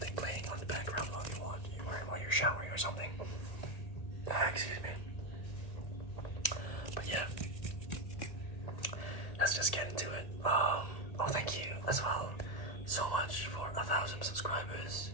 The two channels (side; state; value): right; late; 1.8 ms